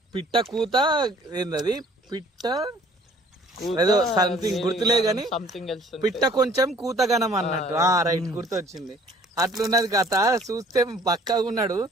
కూత ఏందది? పిట్ట ఏదో సంథింగ్ గుర్తులే గాని పిట్ట కొంచెం కూతగనం అన్నట్టు. రైట్, గుర్తొచ్చింది. అట్లున్నది కథ. చూస్తే పక్కగా ఉన్నాడు,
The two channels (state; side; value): normal; both; correlation 0.54